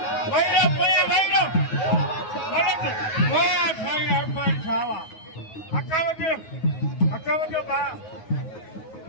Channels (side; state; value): right; late; 9.4 ms